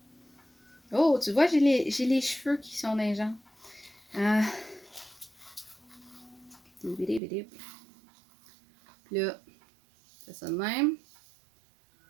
Oh, tu vois, j'ai les cheveux qui sont dans les jambes. Puis là, c'est ça de même.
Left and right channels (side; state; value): left; drops out; at 7.2 s